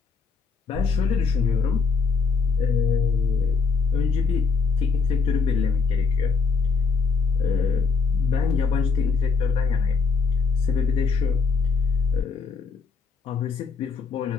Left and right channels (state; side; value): quieter; right; 5.0 dB